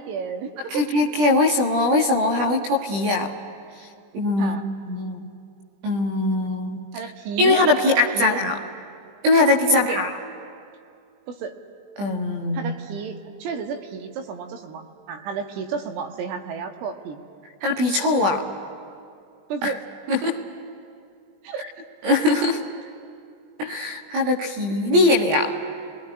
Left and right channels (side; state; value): left; late; 20 ms